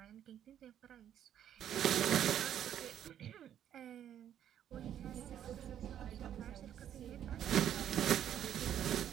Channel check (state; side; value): quieter; left; 10.3 dB